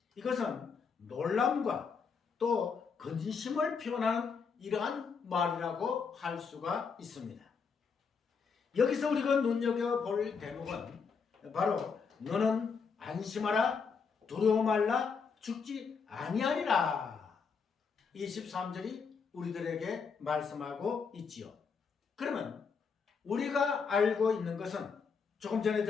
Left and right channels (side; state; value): right; quieter; 5.6 dB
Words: 이것은 놀람과 또 근심을 표현하는 이러한 말이라고 할 수가 있습니다. 여기서 우리가 눈여겨볼 대목은 바로 너는 안심하라 두려워 말라 죽지 아니하리라. 23절이 우리들에게 말씀하고 있지요. 그러면 우리가 알고 있는 것은 조금 전에